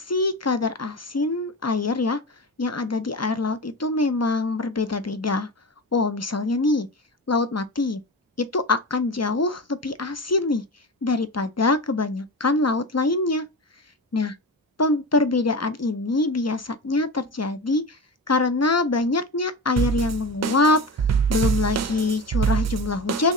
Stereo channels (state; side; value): normal; both; correlation 0.27